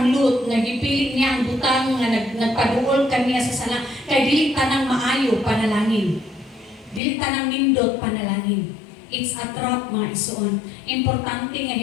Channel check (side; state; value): right; drops out; at 7.0 s